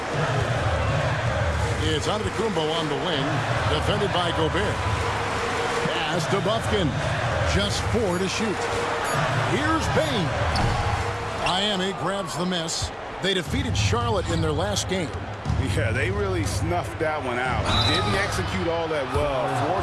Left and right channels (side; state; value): both; identical; correlation 1.00